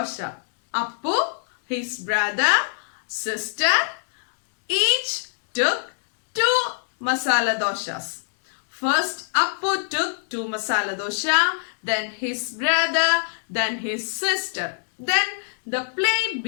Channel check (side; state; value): right; silent; digital silence